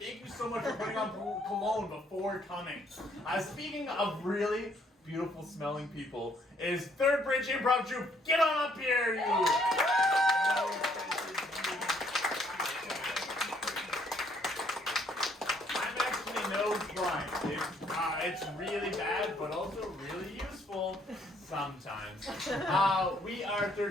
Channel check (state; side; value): normal; both; correlation 0.67